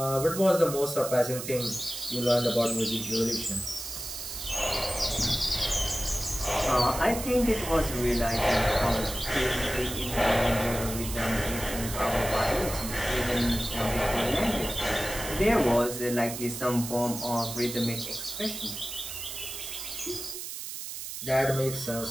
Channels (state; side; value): noise; right; hiss, 8 dB below the sound